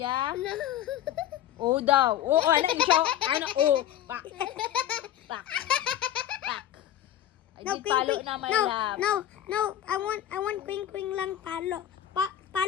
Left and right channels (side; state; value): right; quieter; 11.4 dB